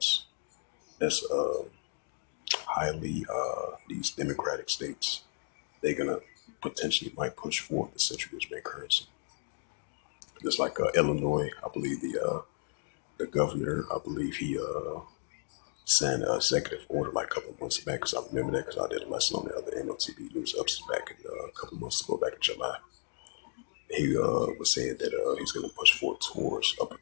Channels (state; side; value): silent; right; digital silence